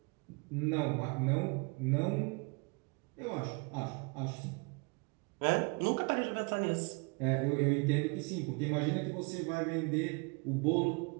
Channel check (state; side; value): quieter; left; 31.2 dB